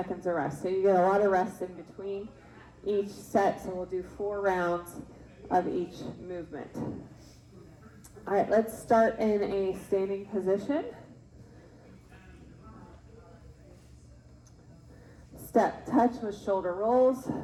of rest. So you get a lot of rest in between each set. So we'll do 4 rounds of each movement. All right, let's start in a standing position. Step touch with shoulder rolls.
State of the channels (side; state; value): both; identical; correlation 1.00